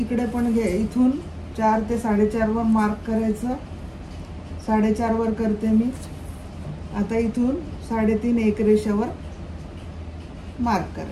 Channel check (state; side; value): identical; both; correlation 1.00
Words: पण घे, इथून 4 ते 4.5 वर मार्क करायचं, 4.5 वर करते मी. आता इथून 3.5 एक रेषावर मार्क